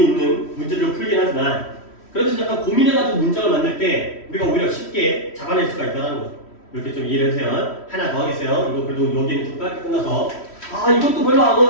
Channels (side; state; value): right; late; 3.1 ms